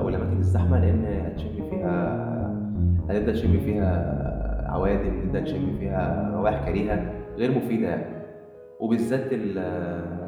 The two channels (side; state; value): both; identical; correlation 1.00